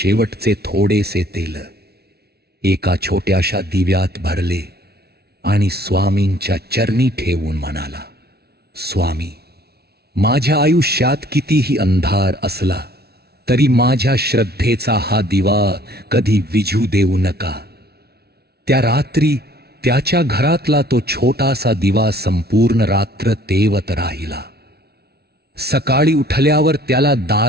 थोडेसे तेल एका छोट्याशा दिव्यात भरले आणि स्वामींच्या चरणी ठेवून म्हणाला, स्वामी, माझ्या आयुष्यात कितीही अंधार असला तरी माझ्या श्रद्धेचा हा दिवा कधी विझू देऊ नका। त्या रात्री त्याच्या घरातला तो छोटासा दिवा संपूर्ण रात्र तेवत राहिला। सकाळी उठल्यावर त्याला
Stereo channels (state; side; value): late; left; 0.46 ms